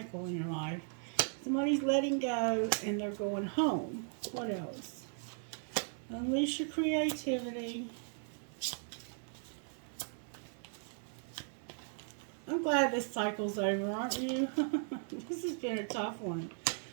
in your life. Somebody's letting go and they're going home. What else? Unleash your creativity. I'm glad this cycle's over, aren't you? This has been a tough one.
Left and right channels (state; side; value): silent; left; 53 dB below the other